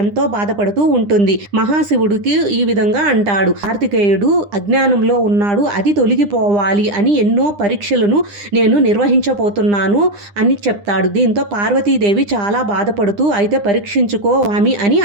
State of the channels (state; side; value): late; left; 9.9 ms